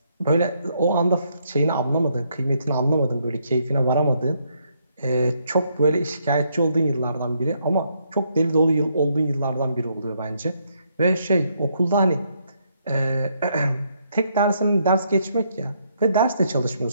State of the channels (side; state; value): both; inverted; correlation -0.74